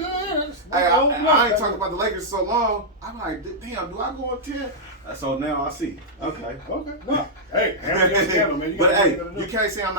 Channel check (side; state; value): both; normal; correlation -0.09